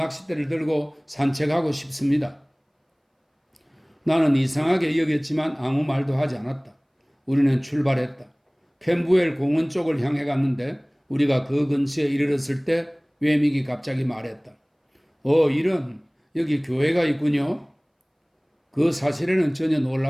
들고 산책하고 싶습니다. 나는 이상하게 여겼지만 아무 말도 하지 않았다. 우리는 출발했다. 캠부엘 공원 쪽을 향해 갔는데 우리가 그 근처에 이르렀을 때 외믹이 갑자기 말했다. 이런 여기 교회가 있군요. 그 사실에는 전혀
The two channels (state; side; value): identical; both; correlation 1.00